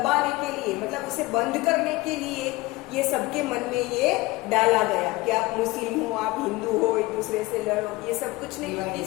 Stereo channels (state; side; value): quieter; right; 21.0 dB